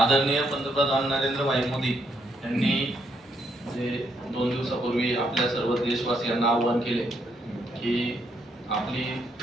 पंतप्रधान नरेंद्र भाई मोदी यांनी जे 2 दिवसापूर्वी आपल्या सर्व देशवासियांना आवाहन केले की आपली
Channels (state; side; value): normal; both; correlation 0.75